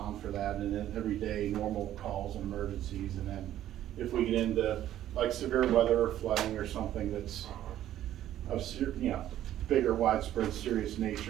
for that, and then everyday normal calls and emergencies. And then if we get into like severe weather or flooding or something that's of bigger, widespread, serious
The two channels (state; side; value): quieter; left; 12.3 dB